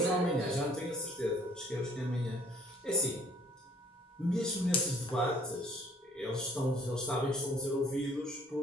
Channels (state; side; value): normal; both; correlation 0.58